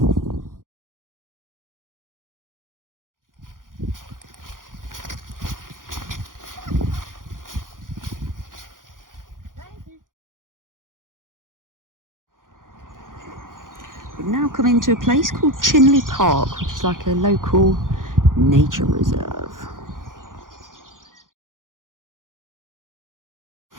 We've now come into a place called Chinley Park, which is like a local nature reserve.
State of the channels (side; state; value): left; late; 0.89 ms